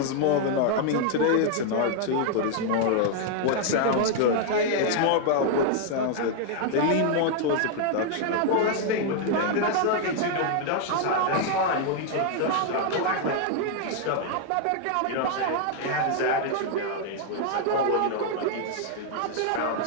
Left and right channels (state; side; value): different; both; correlation 0.00